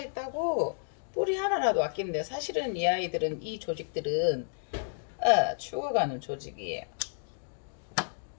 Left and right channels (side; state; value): right; silent; digital silence